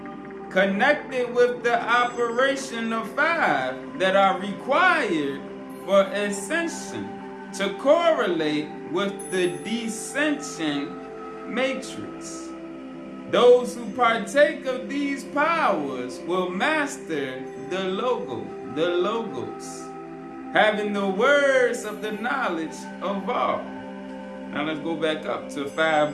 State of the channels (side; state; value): both; identical; correlation 1.00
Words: connected with the operation of 5 that are required for ascension to correlate with the descension matrix. Those who partake of these powers will master the logos, having the words of the knowledge of all. Now let's go back up to 5